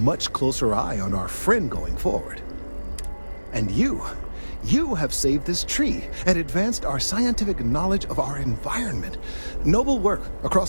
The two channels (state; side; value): inverted; both; correlation -1.00